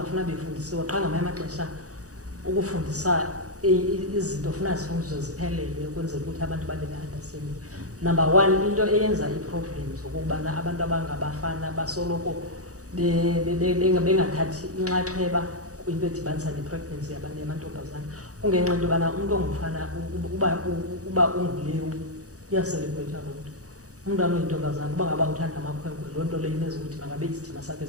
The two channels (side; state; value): left; late; 0.66 ms